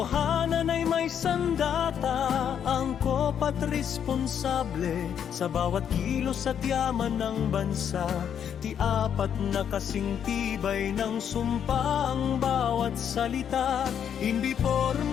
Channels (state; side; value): quieter; right; 8.6 dB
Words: ay may sandata. Angkop at responsable sa bawat kilos at yaman ng bansa. Ti apat na kasing tibay ng sumpa ang bawat salita. Hindi